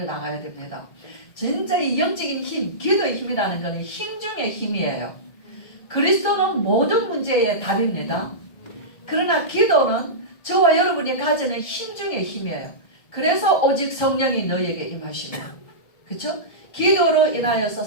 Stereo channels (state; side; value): late; right; 1.7 ms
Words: 나가야 됩니다. 진짜 이 영적인 힘, 기도의 힘이라는 것은 힘 중의 힘이에요. 그리스도는 모든 문제의 답입니다. 그러나 기도는 저와 여러분이 가지는 힘 중의 힘이에요. 그래서 오직 성령이 너희에게 임하시면, 그렇죠? 기도로 인하여서